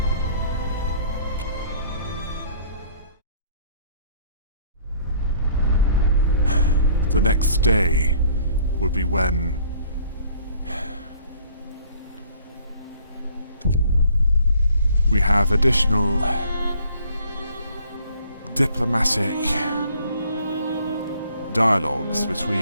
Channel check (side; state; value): both; inverted; correlation -0.57